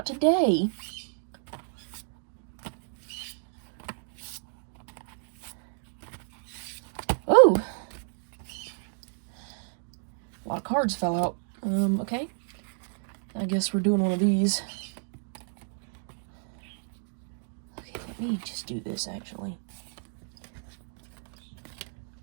today. Oh! A lot of cards fell out. Okay. I guess we're doing one of these. Okay, let me just do this, actually.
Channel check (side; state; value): left; silent; digital silence